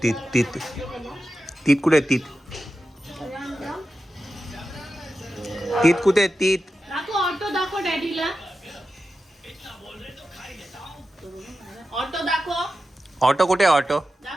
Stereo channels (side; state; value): both; normal; correlation 0.91